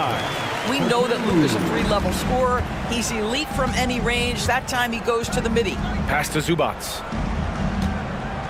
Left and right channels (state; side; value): identical; both; correlation 1.00